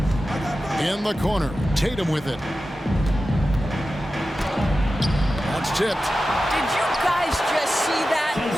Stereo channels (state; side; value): normal; both; correlation 0.93